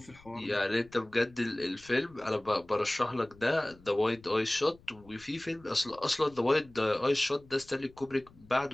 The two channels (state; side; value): noise; left; rumble, 25 dB below the sound